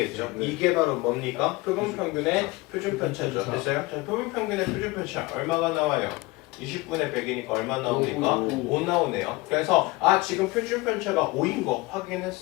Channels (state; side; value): quieter; right; 22.2 dB